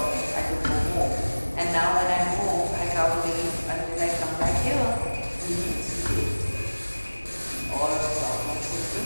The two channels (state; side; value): inverted; both; correlation -1.00